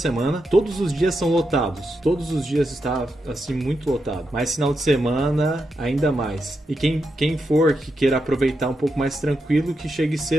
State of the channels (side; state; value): both; normal; correlation 0.85